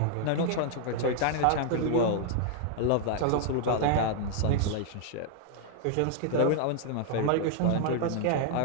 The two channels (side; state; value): both; different; correlation 0.00